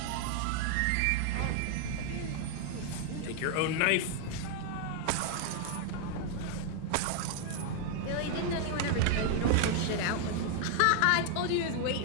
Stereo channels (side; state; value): both; different; correlation 0.00